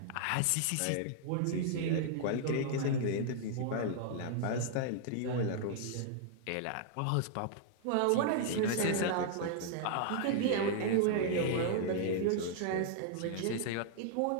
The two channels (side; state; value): both; different; correlation -0.01